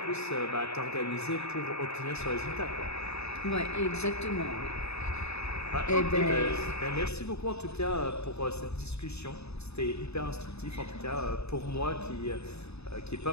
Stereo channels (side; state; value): right; late; 0.80 ms